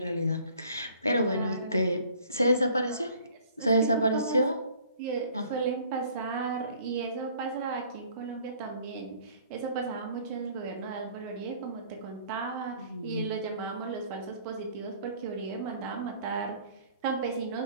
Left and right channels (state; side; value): inverted; both; correlation -0.54